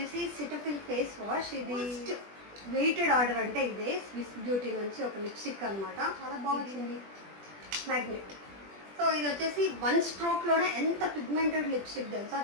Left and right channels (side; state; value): left; late; 20 ms